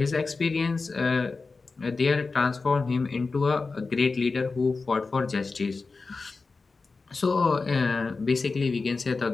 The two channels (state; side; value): quieter; right; 4.1 dB